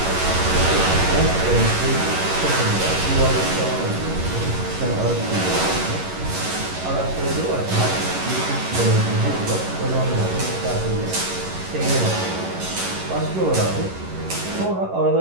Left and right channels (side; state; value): left; late; 11 ms